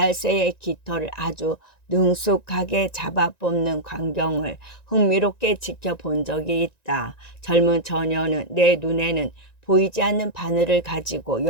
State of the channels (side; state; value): right; late; 1.9 ms